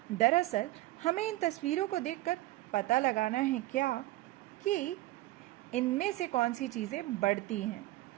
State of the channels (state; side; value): quieter; left; 17.9 dB